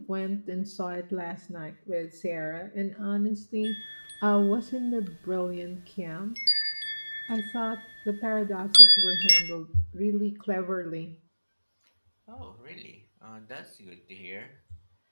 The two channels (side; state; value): both; inverted; correlation -1.00